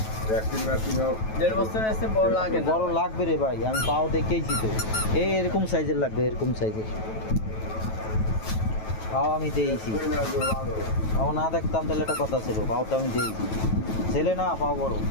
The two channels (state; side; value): late; right; 9.2 ms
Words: 1.5 বছর এসে বড় লাগে না। বড় লাগবে রে ভাই, আমি পাও দেখেইছি তো, এরকম সাইজের লাগবে, এরকম সাইজের পাও আমি দিয়েছি। পাও না দেখতাম তাহলে একটা কথা ছিল, পাও তো আমি দিয়েছি, ছেলে না পাও বড়।